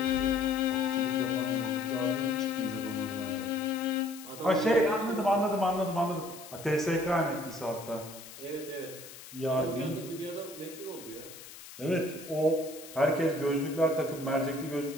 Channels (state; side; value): noise; left; hiss, 15 dB below the sound